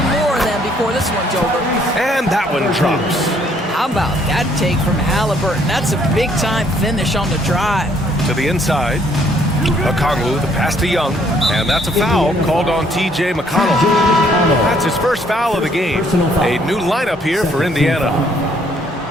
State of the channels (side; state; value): both; normal; correlation 0.65